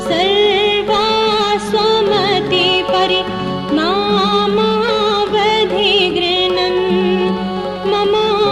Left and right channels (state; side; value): identical; both; correlation 1.00